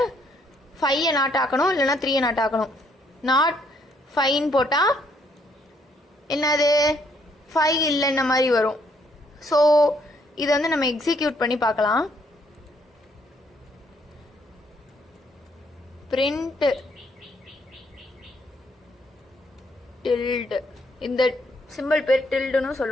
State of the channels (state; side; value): normal; both; correlation 0.69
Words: 5 நாட் ஆக்கணும், இல்லைன்னா 3 நாட் ஆக்கணும். நாட் 5ன்னு போட்டால் என்னது 5 இல்லைன்ன மாதிரி வரும். ஸோ இதை வந்து நம்ம எக்ஸிக்யூட் பண்ணி பார்க்கலாம். பிரிண்ட் டில்டு, இந்த சிம்பிள் பேர் டில்டுன்னு